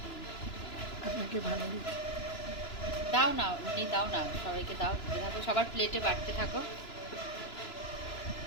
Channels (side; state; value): right; late; 2.9 ms